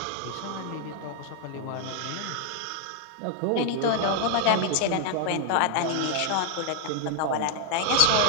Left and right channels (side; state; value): both; different; correlation 0.00